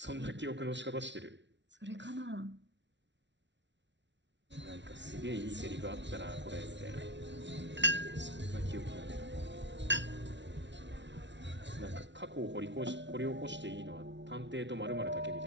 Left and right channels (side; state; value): left; late; 0.52 ms